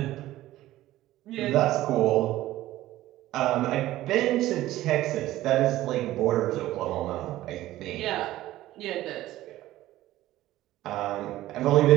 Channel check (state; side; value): quieter; left; 15.3 dB